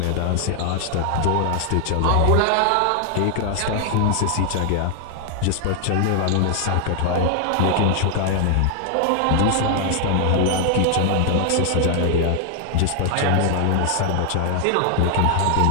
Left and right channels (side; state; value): both; different; correlation 0.00